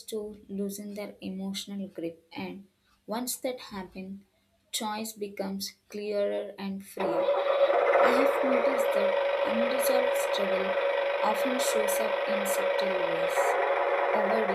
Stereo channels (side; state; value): both; identical; correlation 1.00